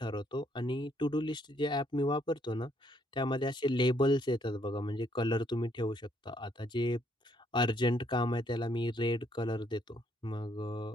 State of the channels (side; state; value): both; normal; correlation 0.69